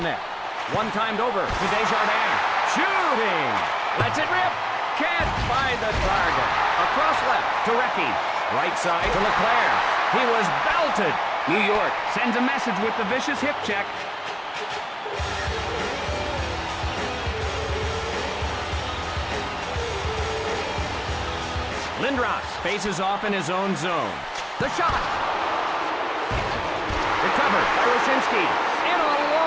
One timed over to Desjardins. Shooting. Lets it rip. Can't find the target. Across left to Recchi. Right side to Leclerc. He was belted. New York sends a message with the vicious hip check. Lindros faces off in his own zone. The shot. Recovered by Wyszynski. In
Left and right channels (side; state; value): both; identical; correlation 1.00